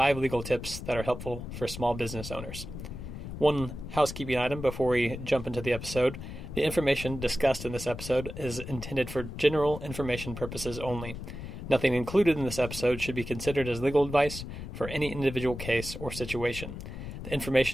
legal tips that are helpful for small business owners. One housekeeping item before we jump into the episode: the information discussed in this episode is intended for general information purposes only. Nothing included in this episode should be considered as legal advice for any individual case or situation. The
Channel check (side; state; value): left; noise; rumble, 9 dB below the sound